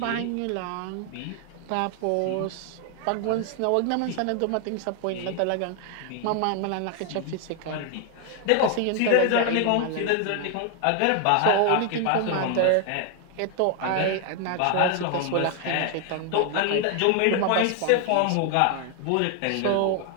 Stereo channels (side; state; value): both; different; correlation 0.00